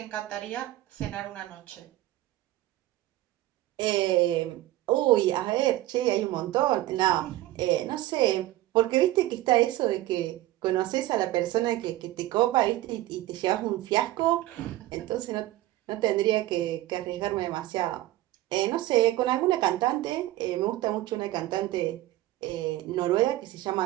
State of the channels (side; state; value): left; quieter; 16.0 dB